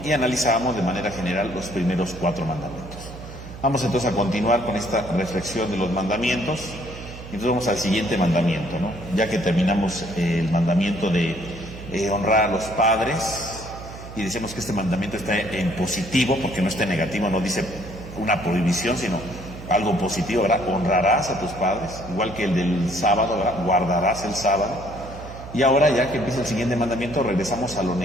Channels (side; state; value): right; noise; hum, 13 dB below the sound